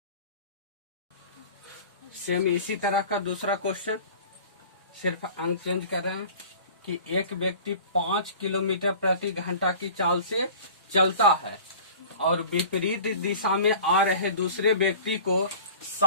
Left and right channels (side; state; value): both; inverted; correlation -0.42